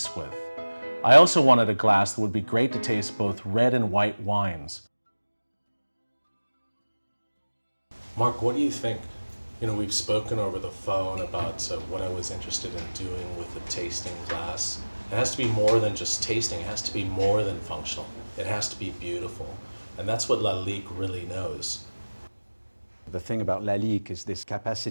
with. I also wanted a glass that would be great to taste both red and white wines. Mark, what do you think? We've spoken over the phone about what I was interested in doing with the tasting glass. It has to be more than just tasting. It has to be more than functional. It has to be beautiful. And that's what LALIQUE really knows. The thing about LALIQUE is this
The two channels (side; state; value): both; inverted; correlation -1.00